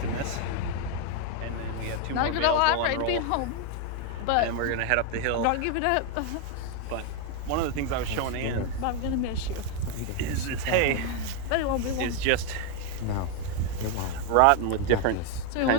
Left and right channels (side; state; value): both; different; correlation 0.01